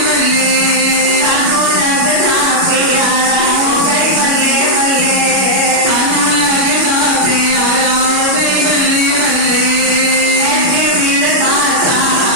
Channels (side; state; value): left; late; 37 ms